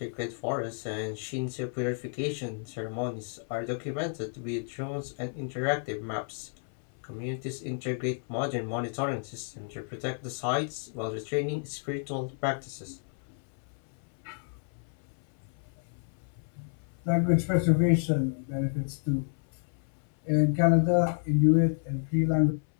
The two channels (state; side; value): silent; right; 57 dB below the other